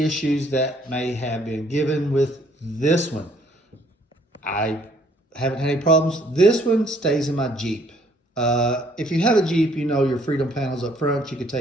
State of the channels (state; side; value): normal; both; correlation 0.63